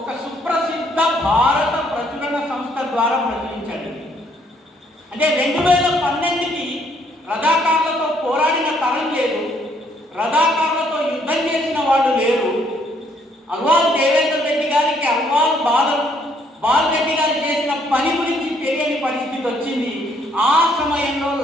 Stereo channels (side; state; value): both; normal; correlation 0.67